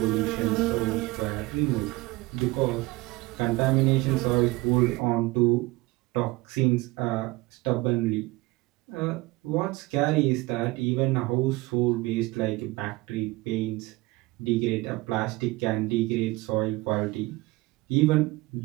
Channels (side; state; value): left; quieter; 21.3 dB